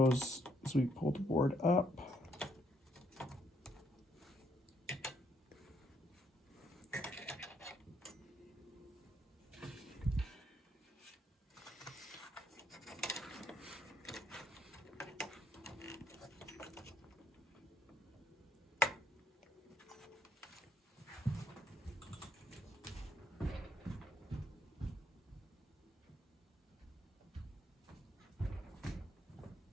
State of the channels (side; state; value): both; normal; correlation 0.71